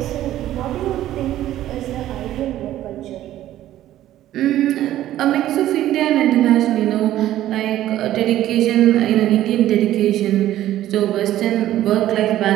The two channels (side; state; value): left; quieter; 13.4 dB